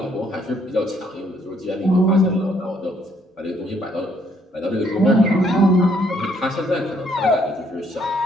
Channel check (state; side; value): normal; both; correlation 0.68